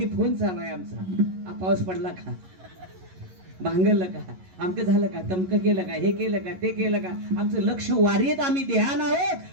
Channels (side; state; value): left; late; 11 ms